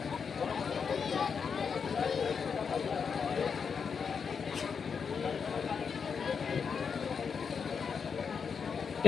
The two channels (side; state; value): right; quieter; 6.2 dB